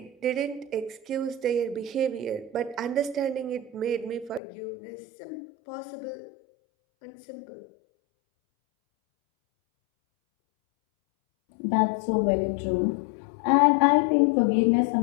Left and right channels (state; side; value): drops out; right; at 4.4 s